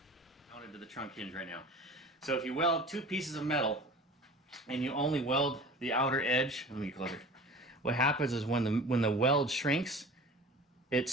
Mounted to the trunk hinge right now. So if you weld two pieces of metal and you only weld the outer edge, let me get closer. What happens is when the weld shrinks, it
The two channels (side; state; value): both; normal; correlation 0.40